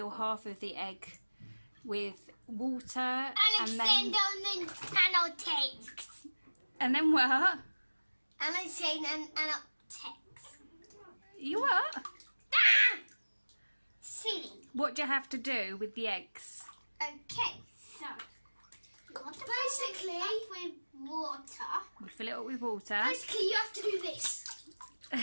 half of the egg with water and then text. And then what? Text. You what? Ah! Silly. What do you have to do with the eggs? Okay, so basically with water. We fill it up with water. Basically, you have to do this,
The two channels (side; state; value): both; inverted; correlation -1.00